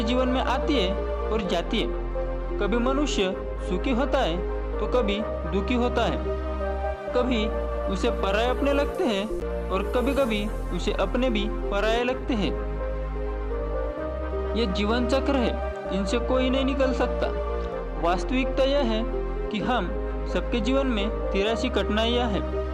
जीवन में आती है और जाती है। कभी मनुष्य सुखी होता है तो कभी दुखी होता है, कभी उसे पराये अपने लगते हैं और कभी कभी उसे अपने भी पराये लगते हैं। ये जीवन चक्र है, इनसे कोई नहीं निकल सकता। वास्तविकता यह है कि हम सबके जीवन में 83 कठिनाइयाँ हैं।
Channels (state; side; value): identical; both; correlation 1.00